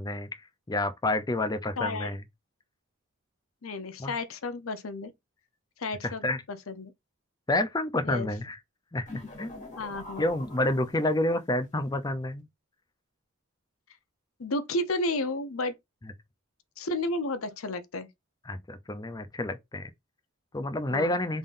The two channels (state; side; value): normal; both; correlation 0.28